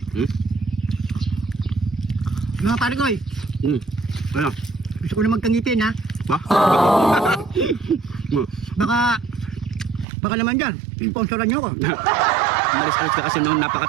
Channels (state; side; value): drops out; left; at 10.1 s